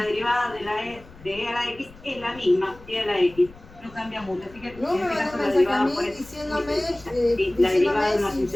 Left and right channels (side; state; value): left; noise; rumble, 21 dB below the sound